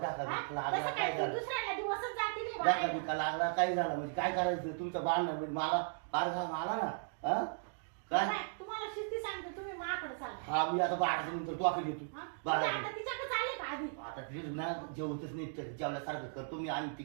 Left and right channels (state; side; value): silent; left; digital silence